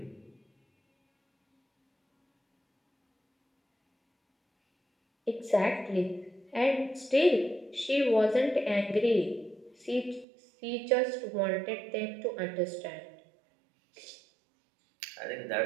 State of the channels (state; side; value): drops out; left; at 10.2 s